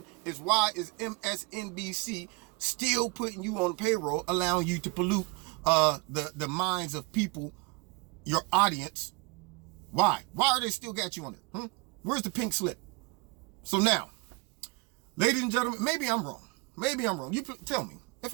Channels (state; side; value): quieter; left; 26.7 dB